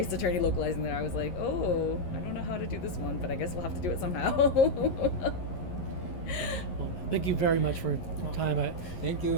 Attorney localizing that I was like, oh, I don't know how to do this one, but I guess we'll have to do it somehow. Well, thank you very much for your time. Thank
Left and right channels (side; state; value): right; late; 11 ms